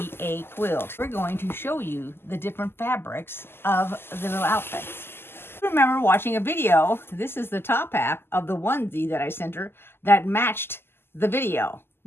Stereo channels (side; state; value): right; late; 0.11 ms